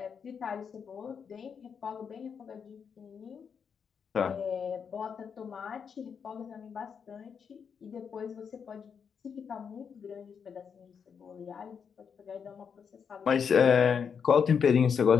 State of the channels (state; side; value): quieter; right; 6.7 dB